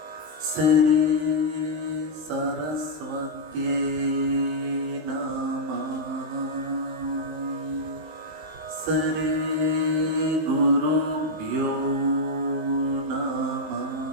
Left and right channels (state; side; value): late; left; 20 ms